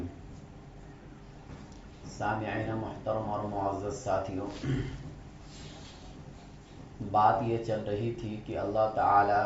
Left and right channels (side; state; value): both; identical; correlation 1.00